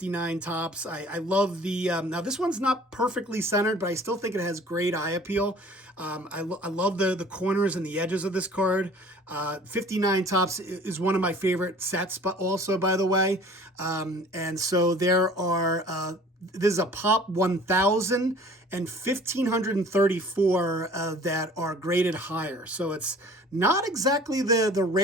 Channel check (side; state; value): both; normal; correlation 0.49